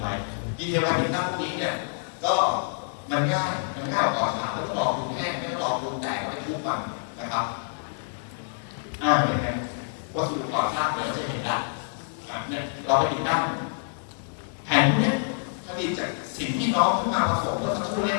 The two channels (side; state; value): right; silent; digital silence